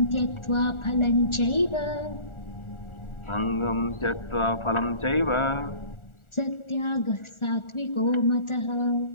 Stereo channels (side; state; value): right; late; 1.4 ms